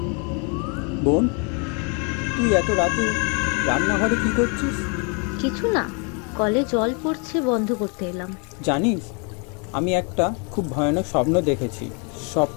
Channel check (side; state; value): right; quieter; 35.2 dB